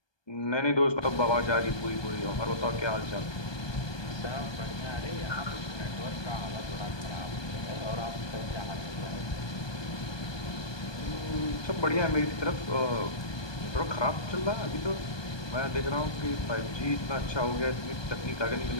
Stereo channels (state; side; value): late; right; 1.2 ms